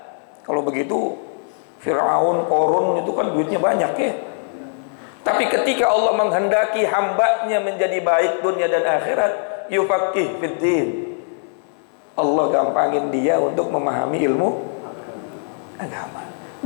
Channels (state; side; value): silent; right; digital silence